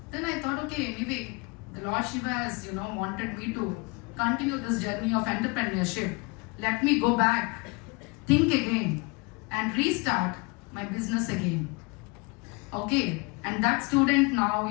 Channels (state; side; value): quieter; right; 29.0 dB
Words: Then I thought, okay, anyway, the Lord Shiva has, wanted me to continue this journey of entrepreneurship. Let me go back, think again, and restart my business again. Okay, and that student